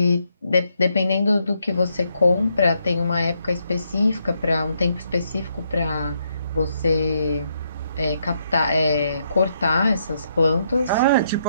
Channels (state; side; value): inverted; both; correlation -0.76